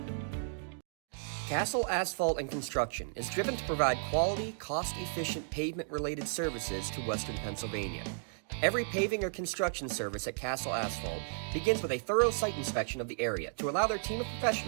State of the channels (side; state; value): left; silent; digital silence